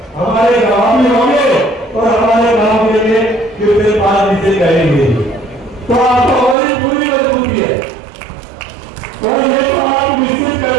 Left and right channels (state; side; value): drops out; left; at 6.6 s